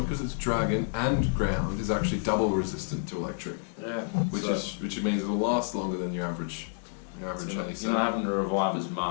because it's dragon and ground, is actually double resistant to electric. Yeah. Which means it'll last longer than your average. You're not having to revive as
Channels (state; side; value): silent; right; digital silence